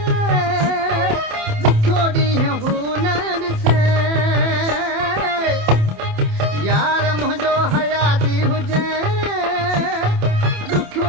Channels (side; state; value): left; late; 27 ms